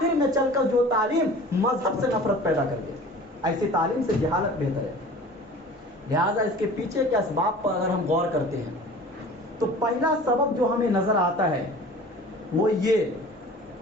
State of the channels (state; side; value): normal; both; correlation 0.43